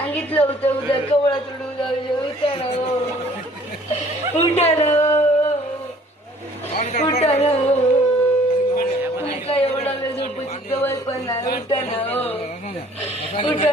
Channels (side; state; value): both; normal; correlation 0.56